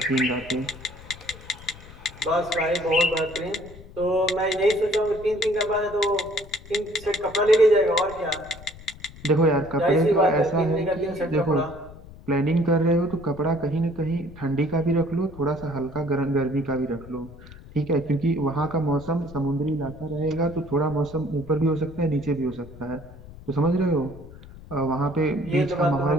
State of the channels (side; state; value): left; noise; rumble, 18 dB below the sound